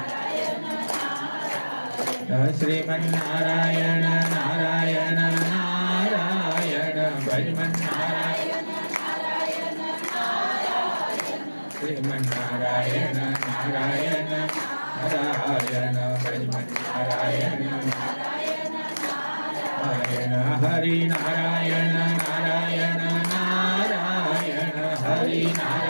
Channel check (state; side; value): inverted; both; correlation -1.00